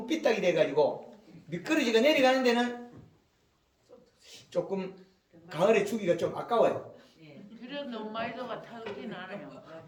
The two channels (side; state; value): both; identical; correlation 1.00